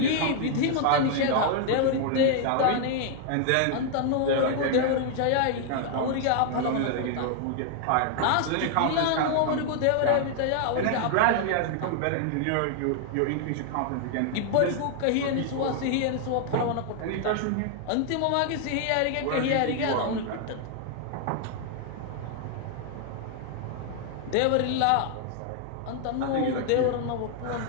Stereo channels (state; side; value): different; both; correlation 0.00